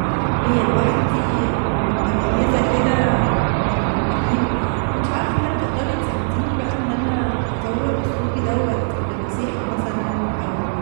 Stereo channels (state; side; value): silent; left; digital silence